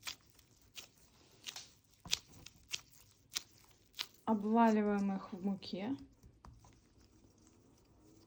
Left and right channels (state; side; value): identical; both; correlation 1.00